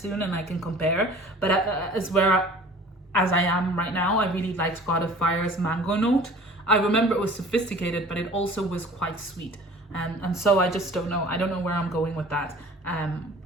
and I can compare. But as I am right now, I really liked God of Fire's mango note. I remember it was sophisticated, but it also was quite sweet. And so I just don't know. I don't know where I'm going with that.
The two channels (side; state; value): both; normal; correlation 0.46